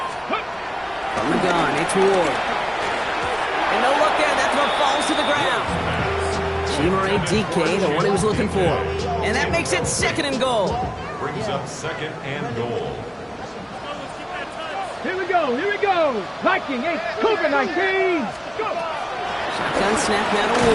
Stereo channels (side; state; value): both; identical; correlation 1.00